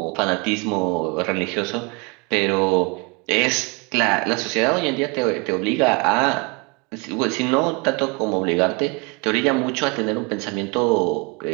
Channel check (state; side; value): quieter; left; 29.3 dB